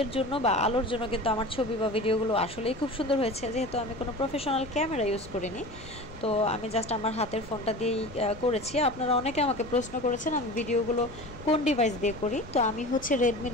জন্য বা আলোর জন্য কিন্তু আমার ছবি বা ভিডিওগুলো আসলেই খুব সুন্দর হয়েছে। যেহেতু আমি কোনো প্রফেশনাল ক্যামেরা ইউজ করিনি, তো আমি জাস্ট আমার হাতের ফোনটা দিয়েই করেছি। আপনারা অনেকে আমাকে প্রশ্ন করেছেন আমি ভিডিওগুলো কোন ডিভাইস দিয়ে করি, তো আমি রেডমি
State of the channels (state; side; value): noise; left; rumble, 17 dB below the sound